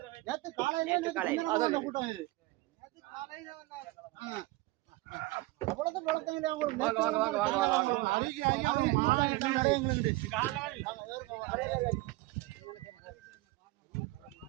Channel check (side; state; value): left; quieter; 20.3 dB